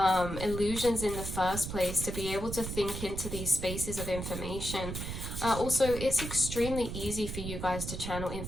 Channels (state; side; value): noise; right; rumble, 6 dB below the sound